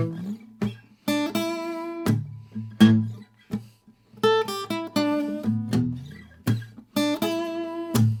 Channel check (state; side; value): identical; both; correlation 1.00